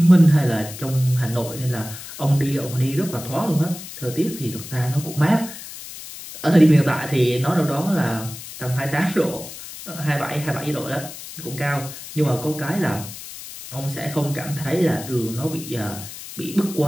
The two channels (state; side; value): noise; left; hiss, 12 dB below the sound